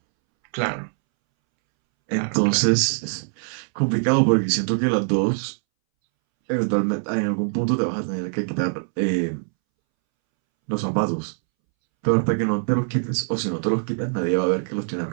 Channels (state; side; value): silent; left; 63 dB below the other